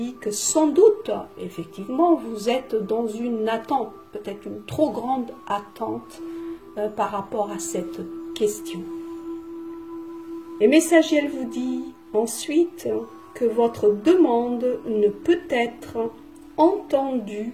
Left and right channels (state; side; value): identical; both; correlation 1.00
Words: que sans doute, effectivement, vous êtes dans une attente, peut-être une trop grande attente par rapport à cette question. Et Messagiel vous dit ensuite que votre demande ne peut être entendue